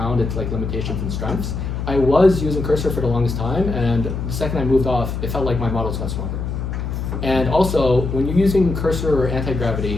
its like limitations and strengths. I was using Cursor for the longest time, and the second I moved off, it felt like my models got stronger. And also, when you're using Cursor or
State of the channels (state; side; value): noise; left; hum, 4 dB below the sound